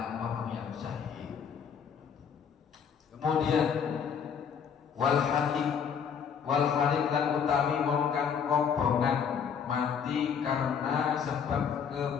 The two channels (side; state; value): right; quieter; 7.2 dB